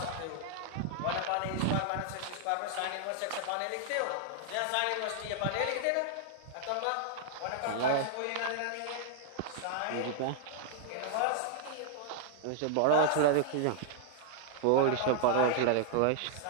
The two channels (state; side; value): different; both; correlation -0.01